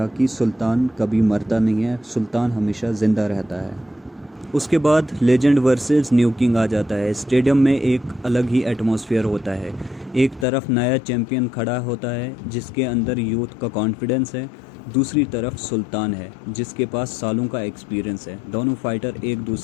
कि सुल्तान कभी मरता नहीं है, सुल्तान हमेशा ज़िंदा रहता है। उसके बाद लेजेंड वर्सेस न्यू किंग आ जाता है। स्टेडियम में एक अलग ही एटमॉस्फेयर होता है। एक तरफ नया चैम्पियन खड़ा होता है जिसके अंदर यूथ का कॉन्फिडेंस है, दूसरी तरफ सुल्तान है जिसके पास सालों का एक्सपीरियंस है। दोनों फाइटर एक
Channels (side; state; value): right; drops out; at 10.5 s